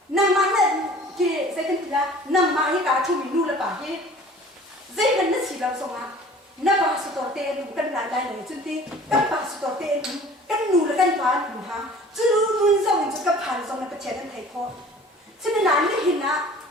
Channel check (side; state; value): both; normal; correlation 0.47